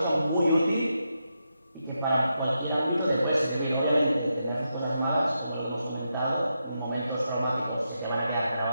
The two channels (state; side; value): inverted; both; correlation -0.85